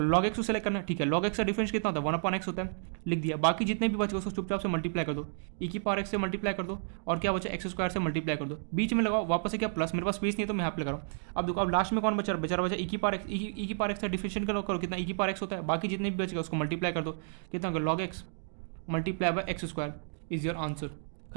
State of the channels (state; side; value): silent; left; digital silence